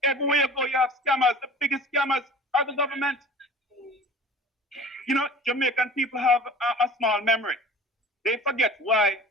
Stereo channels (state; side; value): normal; both; correlation 0.42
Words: Everywhere you go, you have scammers. The biggest scammers are the government. You know, Jamaican people have a small memory. They forget why